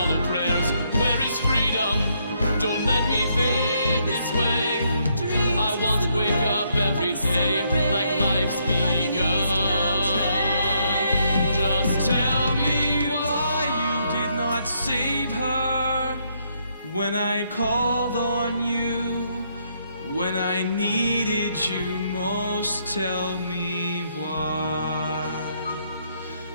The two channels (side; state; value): both; inverted; correlation -0.74